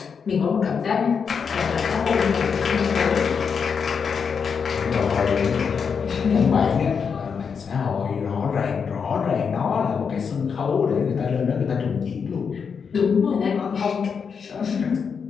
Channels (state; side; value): quieter; right; 6.2 dB